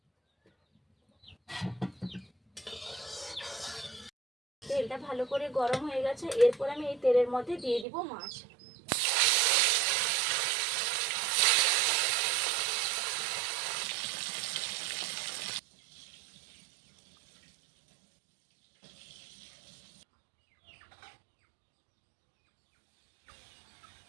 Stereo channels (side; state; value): left; drops out; at 7.9 s